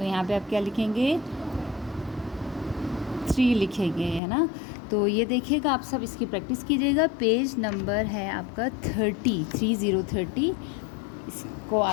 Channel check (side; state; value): right; drops out; at 4.2 s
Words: यहाँ पे आप क्या लिखेंगे? 3 लिखेंगे, है ना। तो ये देखिएगा, आप सब इसकी प्रैक्टिस कीजिएगा। पेज नंबर है आपका 30, इसको